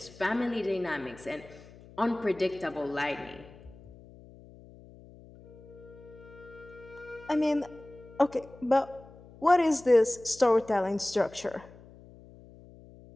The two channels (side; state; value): left; noise; hum, 21 dB below the sound